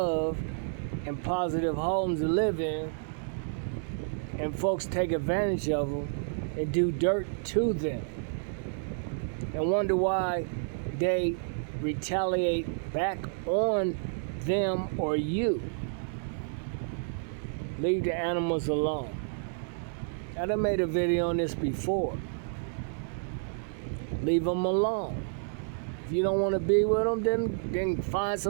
and positive homes to live in. And folks take advantage of them and do dirt to them. And wonder why they retaliate back on them or you. Leave the animals alone. I done made a video on this before. Leave them alone. If you don't want to be with them, then find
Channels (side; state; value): left; silent; 58 dB below the other